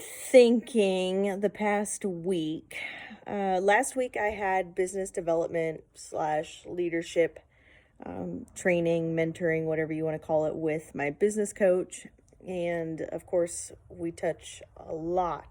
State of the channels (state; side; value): identical; both; correlation 1.00